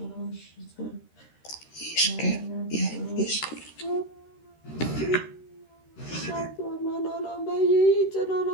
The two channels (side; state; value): right; late; 13 ms